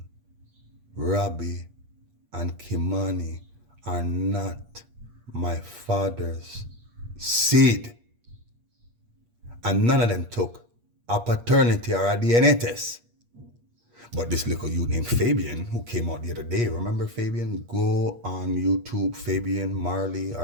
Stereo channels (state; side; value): late; left; 8.4 ms